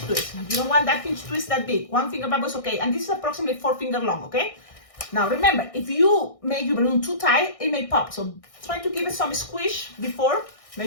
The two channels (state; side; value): late; right; 1.6 ms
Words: twist. You don't want that pinch twist that big. 1-finger bubble is okay, and this is approximately 4 finger long, okay? Now remember, if you make your balloon too tight, it may pop. So try to give it some squish before.